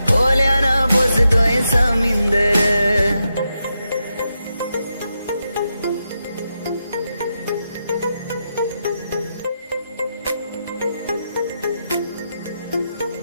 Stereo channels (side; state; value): both; inverted; correlation -0.86